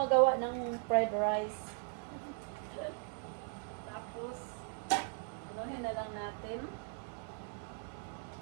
ng fried rice. Tapos, anuhin na lang natin.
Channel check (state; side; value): silent; left; 52 dB below the other